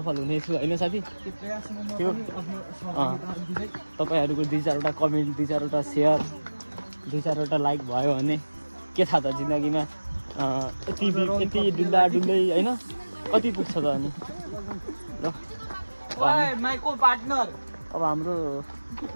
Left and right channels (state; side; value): inverted; both; correlation -1.00